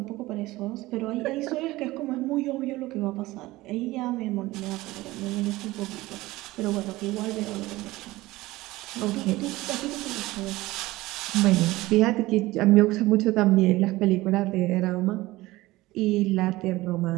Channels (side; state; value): left; quieter; 18.8 dB